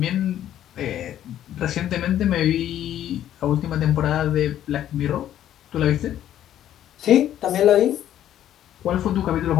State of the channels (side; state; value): right; quieter; 11.5 dB